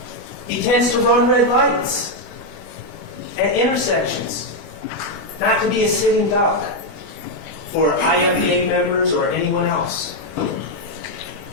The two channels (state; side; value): late; right; 19 ms